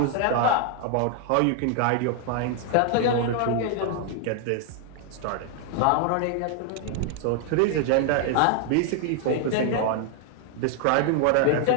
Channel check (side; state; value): both; different; correlation 0.00